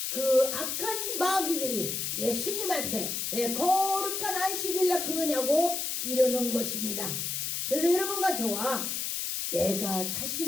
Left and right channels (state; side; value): noise; left; hiss, 2 dB below the sound